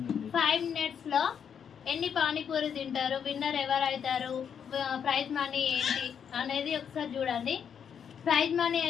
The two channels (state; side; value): quieter; right; 7.7 dB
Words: 5 minutesలో ఎన్ని పానీపూరి తింటారు, విన్నర్ ఎవరు అవుతారు, ప్రైజ్ మనీ ఏంటి అనేది ఒకసారి చూడండి. ప్రైజ్ మనీ